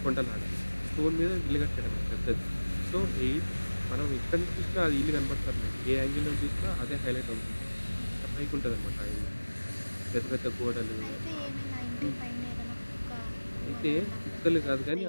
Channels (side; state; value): both; inverted; correlation -1.00